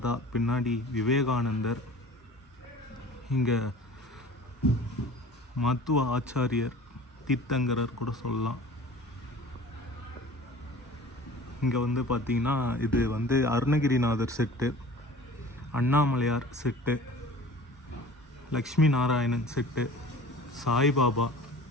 பின்னாடி விவேகானந்தர். இங்கே மத்துவ ஆச்சாரியர், தீர்த்தங்கரர் கூட சொல்லலாம். இங்கே வந்து பார்த்திங்கன்னா இது வந்து Arunagirinathar set, Annamalaiyar set, Lakshmi Narayanan set, Saibaba,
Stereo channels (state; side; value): normal; both; correlation 0.43